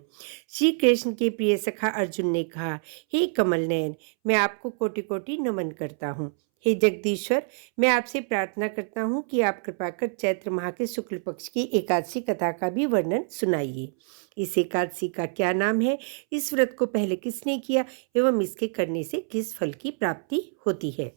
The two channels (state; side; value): silent; left; 61 dB below the other